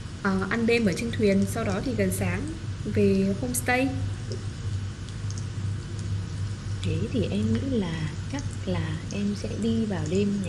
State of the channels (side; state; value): both; identical; correlation 1.00